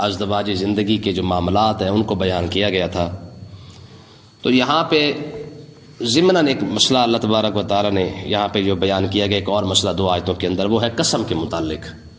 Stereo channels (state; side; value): identical; both; correlation 1.00